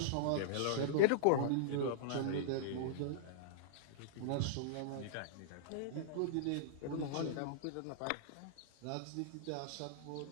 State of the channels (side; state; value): both; different; correlation -0.02